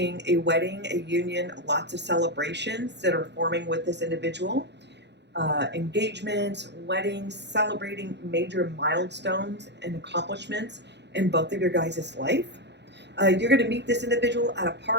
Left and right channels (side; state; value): left; late; 0.50 ms